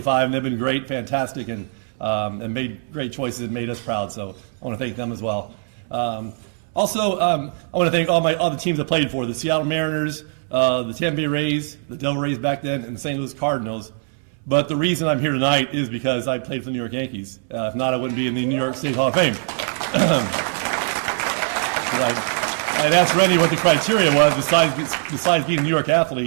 and they've been great, fantastic, and made great choices and made us proud, so I want to thank them as well. Also, I want to thank all the teams I played for, the Seattle Mariners, the Tampa Bay Rays, the Devil Rays back then, and the St. Louis Cardinals. But the reason I'm here tonight is because I played for the New York Yankees. If not, I wouldn't be in the New York State Hall of Fame. I had asked Rennie what the criteria was besides being a New York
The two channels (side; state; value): left; silent; 64 dB below the other